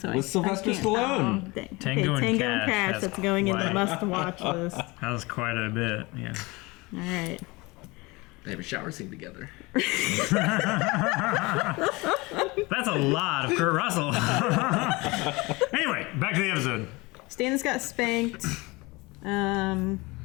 With I Sylvester can't- Stallone. Oh, dang. Tango and Tango Cash has That's going in the quite- must-watch list. That was quite a bit, yeah. All right. They have a shower scene together. That's a lot of Kurt Russell. Anyway, back to the episode. Stannis got spanked. I mean,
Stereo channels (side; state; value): right; quieter; 24.0 dB